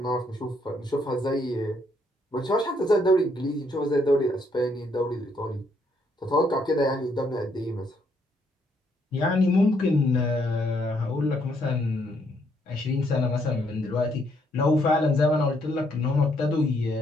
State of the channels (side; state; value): both; normal; correlation 0.72